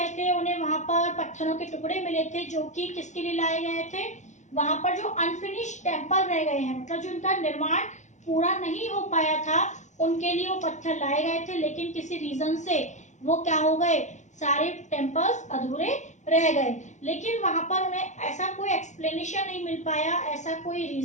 थे उन्हें वहां पर पत्थरों के टुकड़े मिले थे जो कि किसके लिए लाए गए थे, वहां पर जो अनफिनिश्ड टेम्पल रह गए हैं, मतलब जो उनका निर्माण पूरा नहीं हो पाया था, उनके लिए वो पत्थर लाए गए थे। लेकिन किसी रीजन से वो क्या हो गए, सारे टेम्पल्स अधूरे रह गए। लेकिन वहां पर उन्हें ऐसा कोई एक्सप्लेनेशन नहीं मिल पाया, ऐसा कोई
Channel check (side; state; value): right; late; 0.35 ms